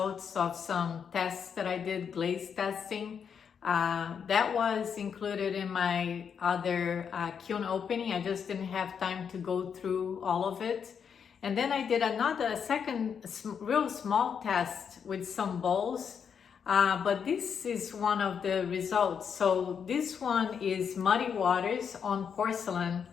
of some tests that I did, glaze testing. That was included in my other kiln opening. I just didn't have time to go through all of it. And then I did a second real small test with some bowls. But this is one of the results. So this one is muddy waters on porcelain.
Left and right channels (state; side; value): quieter; right; 7.1 dB